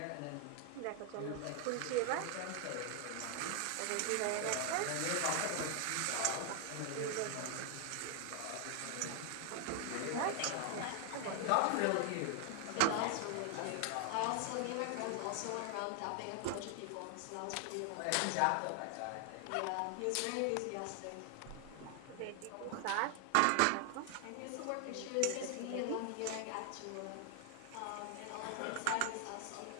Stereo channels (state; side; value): different; both; correlation 0.00